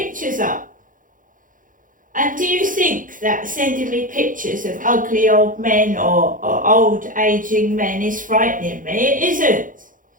up. And do you think that sending me pictures of ugly old men or old aging men is frightening me? It isn't.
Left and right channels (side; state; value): left; late; 0.39 ms